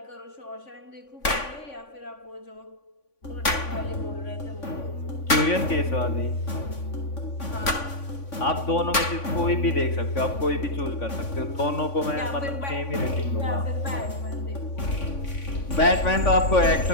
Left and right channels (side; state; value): right; late; 3.5 ms